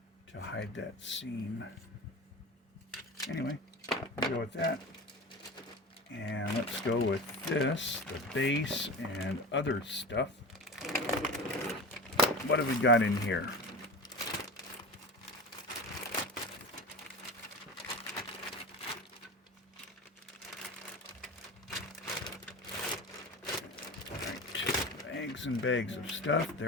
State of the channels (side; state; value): both; normal; correlation 0.30